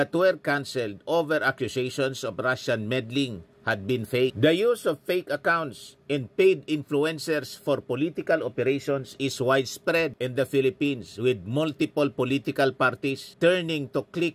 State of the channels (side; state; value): both; identical; correlation 1.00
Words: were cancelled over accusations of Russian meddling had been fake. The use of fake accounts and paid influencers for political operations is widespread in the Philippines, with multiple political parties turning to